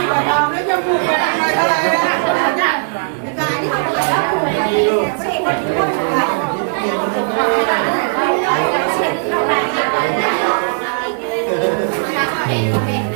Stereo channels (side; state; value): left; silent; 68 dB below the other